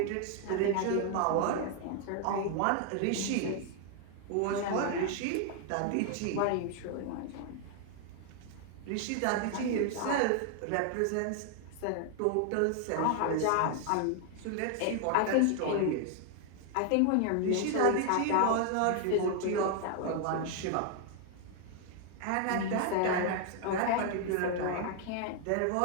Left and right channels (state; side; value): different; both; correlation 0.00